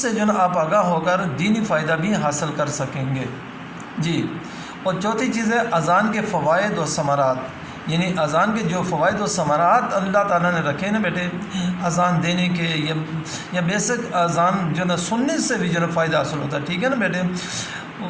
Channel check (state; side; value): identical; both; correlation 1.00